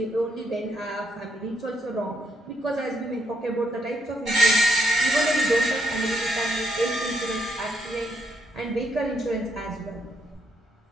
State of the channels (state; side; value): normal; both; correlation 0.75